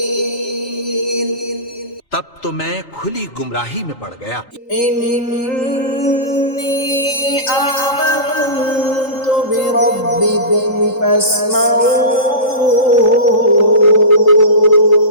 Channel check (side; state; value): right; late; 3.7 ms